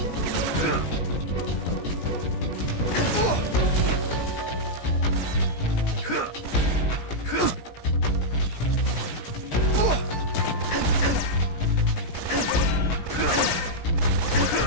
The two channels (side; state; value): right; late; 17 ms